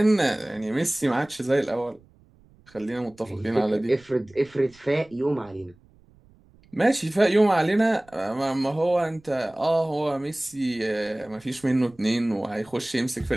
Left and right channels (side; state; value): right; noise; rumble, 28 dB below the sound